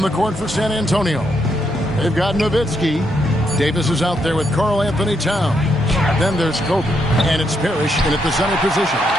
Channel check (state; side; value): normal; both; correlation 0.78